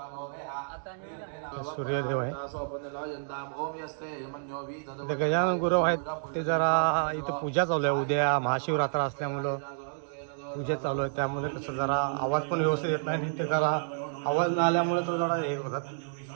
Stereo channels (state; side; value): silent; left; digital silence